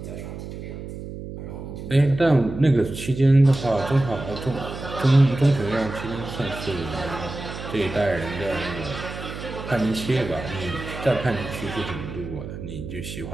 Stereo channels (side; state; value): right; noise; hum, 9 dB below the sound